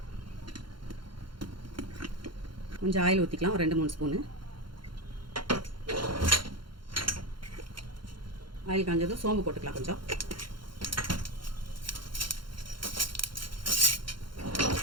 கொஞ்சம் ஆயில் ஊற்றிக்கலாம், ஒரு 2-3 ஸ்பூனு. ஆயில் காஞ்சதும் சோம்பு போட்டுக்கலாம் கொஞ்சம்.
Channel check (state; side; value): late; left; 0.73 ms